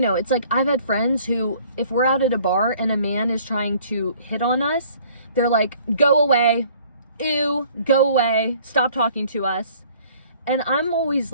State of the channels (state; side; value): inverted; both; correlation -0.55